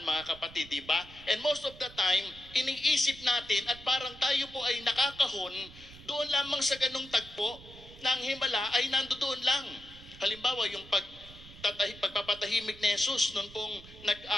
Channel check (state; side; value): noise; right; rumble, 19 dB below the sound